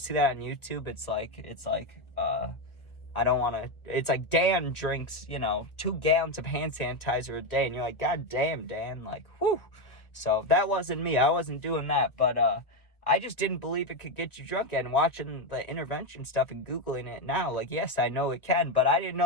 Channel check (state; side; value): late; right; 1.5 ms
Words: that on YouTube? It's like, I don't want to, it's like Dan drinks, 2 gallons of hand sanitizer a day. And you're like, God damn, Dan, like, whew. So that wasn't me. I wasn't doing that. But I just didn't believe it could get you drunk. And watching the intervention stuff and Googling it now, like, yes, I know it can. But I didn't